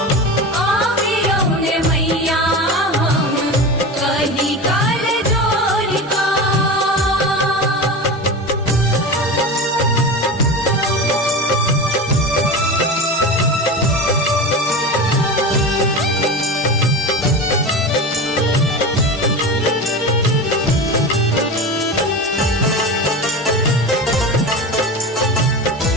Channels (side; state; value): both; normal; correlation 0.26